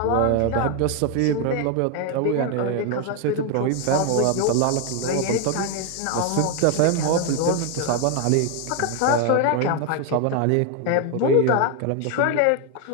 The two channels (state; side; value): different; both; correlation 0.01